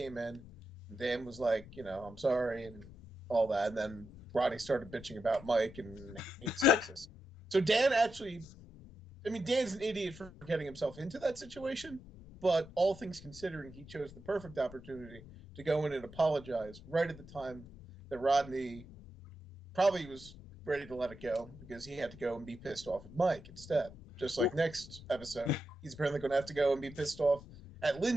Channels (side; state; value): both; normal; correlation 0.88